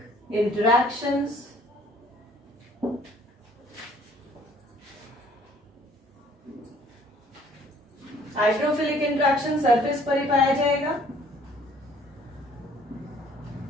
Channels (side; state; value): both; normal; correlation 0.58